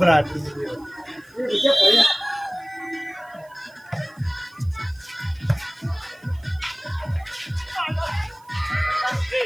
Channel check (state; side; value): noise; right; hiss, 29 dB below the sound